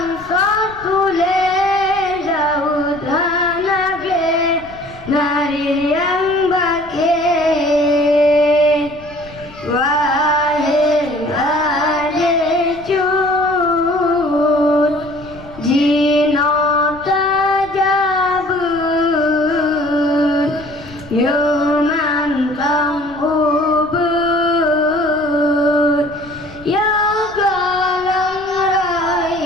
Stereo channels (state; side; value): noise; left; rumble, 21 dB below the sound